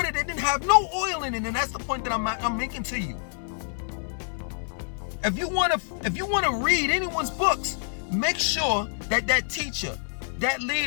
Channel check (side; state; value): right; silent; 60 dB below the other